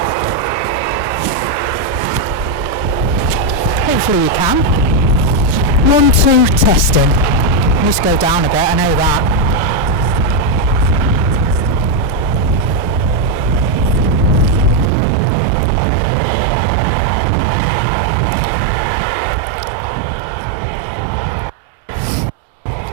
Hopefully you can. 1, 2, testing. I need to go down a bit, I know that.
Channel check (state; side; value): drops out; left; at 14.9 s